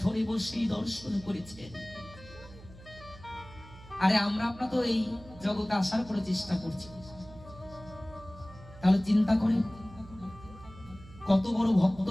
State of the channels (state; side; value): noise; right; hum, 19 dB below the sound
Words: বসেই দর্শন করেছেন। আরে আমরা আপনার তো এই জগতে আসার করে চেষ্টা করছি, তাহলে চিন্তা করে কত বড় ভক্ত